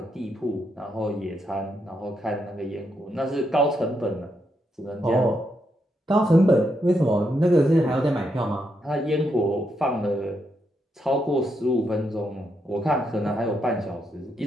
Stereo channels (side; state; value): both; normal; correlation 0.80